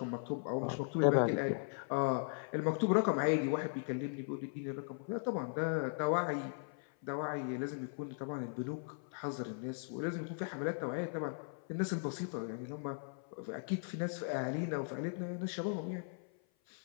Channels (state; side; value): silent; right; 52 dB below the other